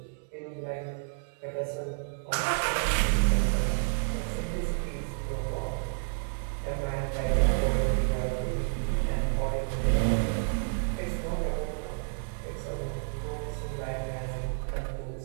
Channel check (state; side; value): silent; left; digital silence